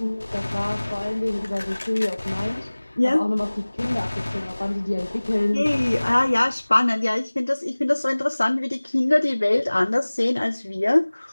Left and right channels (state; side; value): inverted; both; correlation -1.00